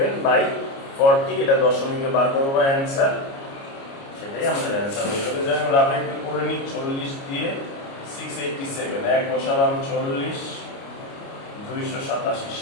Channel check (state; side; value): late; right; 29 ms